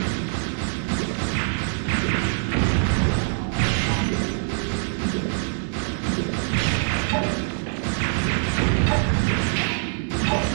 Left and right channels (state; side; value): silent; left; digital silence